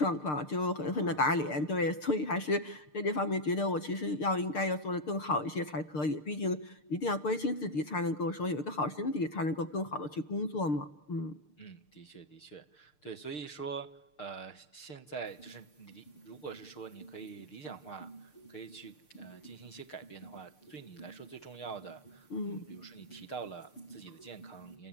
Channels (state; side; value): late; right; 6.6 ms